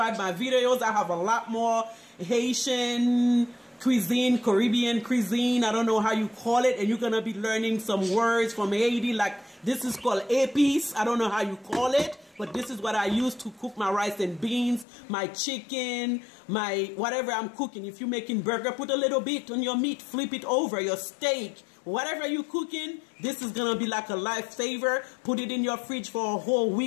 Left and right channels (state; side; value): drops out; right; at 14.9 s